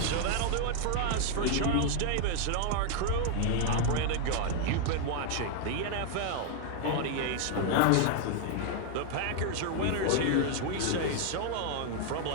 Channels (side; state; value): both; different; correlation 0.00